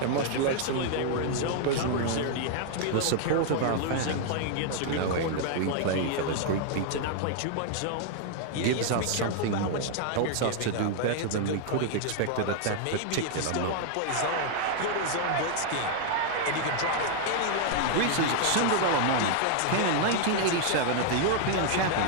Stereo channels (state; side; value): different; both; correlation 0.00